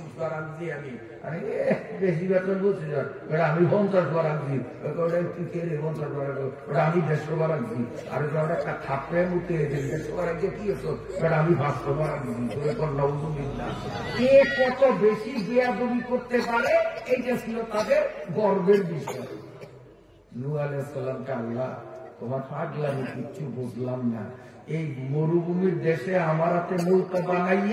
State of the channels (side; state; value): both; identical; correlation 1.00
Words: বার আনছি আমি, আরে বেশি বেতন 25 বার, ওটা আমি 50 বার আনছি, তুই কে রে 50 বার, ওটা আমি 150 বার আনছি, আর ওটা একটা থাপড়ে মুতে 150 বার আনছে, কি হতো ওটা আমি 500 বার আনছি, জোরে কর না। কে কত বেশি বেয়াদবি করতে পারে, এইটা ছিল তাদের গর্বের বিষয়। নূহ আলাইহিস সালামকে আল্লাহ, তোমার পাগলামি কিচ্ছু বুঝলাম না, এই মরুভূমির দেশে আমার হাতে নৌকা